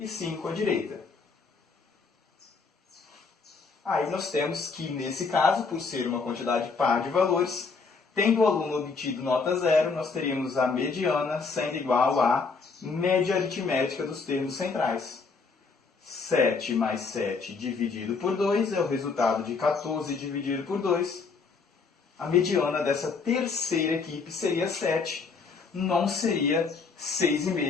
5 à direita. Aí nós temos que, nesse caso, por ser uma quantidade par de valores, tendo o aluno obtido nota 0, nós teríamos a mediana sendo igual à média aritmética dos termos centrais. 7 mais 7 dividido por 2 é o resultado de 14 dividido por 2. A mediana dessa terceira equipe seria 7, não seria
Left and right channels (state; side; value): quieter; right; 4.7 dB